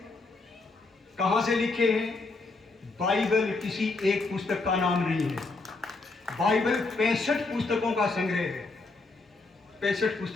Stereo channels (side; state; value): right; quieter; 3.6 dB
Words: कहां से लिखे हैं। बाइबल किसी एक पुस्तक का नाम नहीं है। बाइबल 65 पुस्तकों का संग्रह है, 65